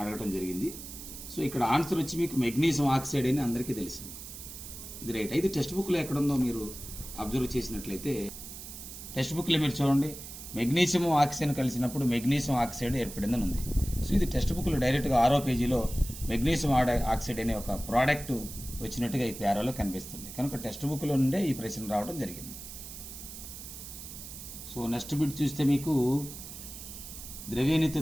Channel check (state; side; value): noise; right; hiss, 12 dB below the sound